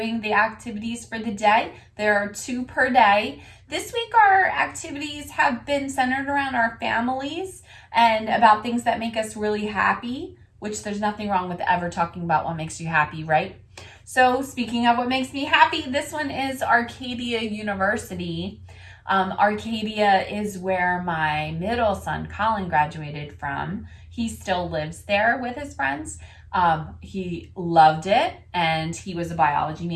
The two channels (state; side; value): identical; both; correlation 1.00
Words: the activities for the day. There are 2 per day. This week our activities have been centered around our families and about things that make us really happy, which there's nothing wrong with ever talking about what makes you happy, right? So speaking of what makes me happy, this one is Arcadia University. Arcadia is where my middle son, Colin, graduated from. He still lives there with his friends. He loved it, and he was a biology